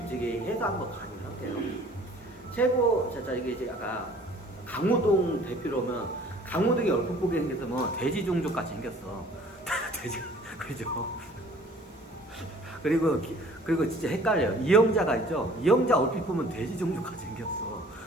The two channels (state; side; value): normal; both; correlation 0.51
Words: 해서 한번 강의를 할게요. 최고 이게 이제 아까 강호동 대표로면 강호동이 얼핏 보게 생겼으면 돼지 종족 같이 생겼어. 돼지 그죠? 그리고 진짜 헷갈려요. 이영자가 있죠? 이영자 얼핏 보면 돼지 종족같이 생겼어.